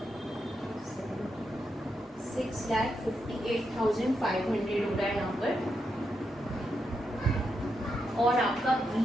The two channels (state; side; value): normal; both; correlation 0.83